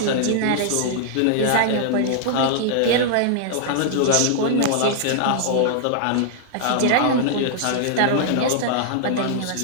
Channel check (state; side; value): different; both; correlation -0.01